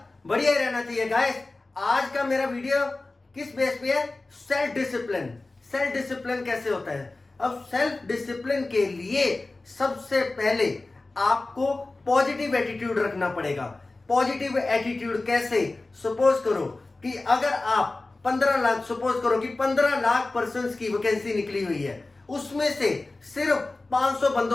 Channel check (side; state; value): right; quieter; 3.2 dB